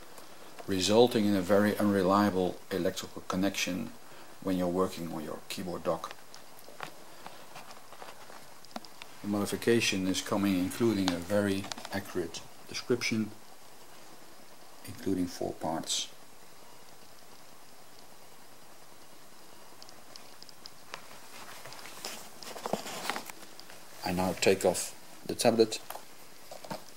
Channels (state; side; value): identical; both; correlation 1.00